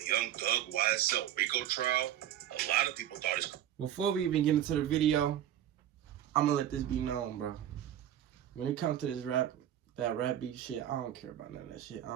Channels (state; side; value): quieter; left; 11.2 dB